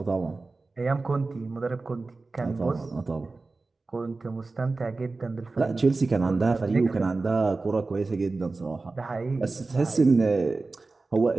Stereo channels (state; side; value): quieter; left; 3.6 dB